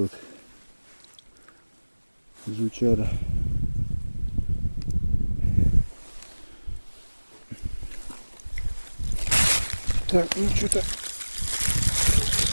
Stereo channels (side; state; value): both; inverted; correlation -1.00